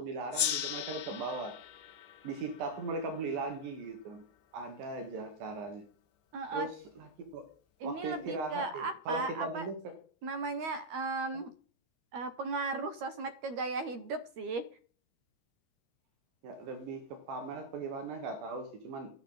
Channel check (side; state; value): left; late; 13 ms